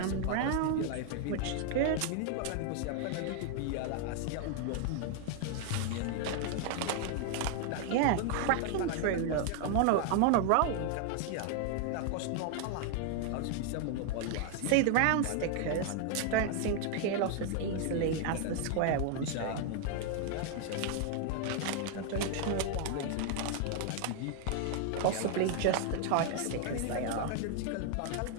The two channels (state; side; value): different; both; correlation 0.00